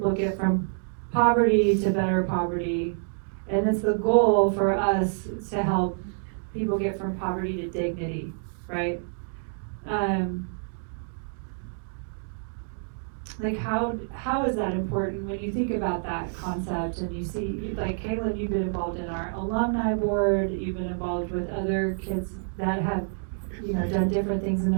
get from poverty to better poverty, and it's the goal for us to help people get from poverty to dignity, right? Like, how is that important when you think about that concept and you see, like, Caylin, you've been involved in our alumni board, you've been involved with other kids that have, you know, done different things in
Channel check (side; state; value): left; silent; digital silence